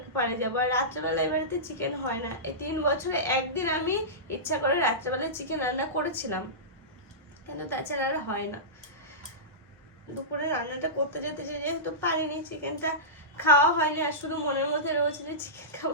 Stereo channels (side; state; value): both; normal; correlation -0.17